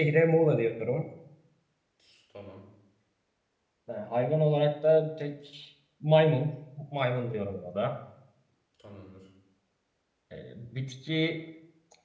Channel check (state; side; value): identical; both; correlation 1.00